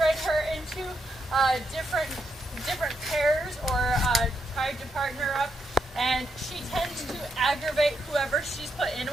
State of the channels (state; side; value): normal; both; correlation 0.80